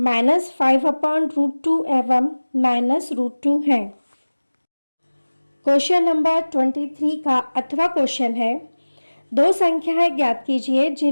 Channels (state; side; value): inverted; both; correlation -1.00